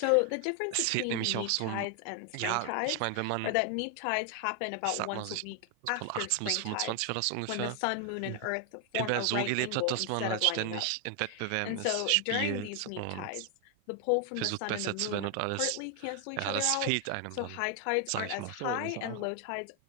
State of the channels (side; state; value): both; different; correlation 0.00